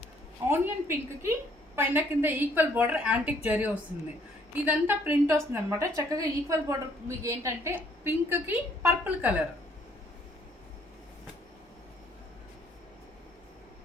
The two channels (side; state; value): both; normal; correlation 0.64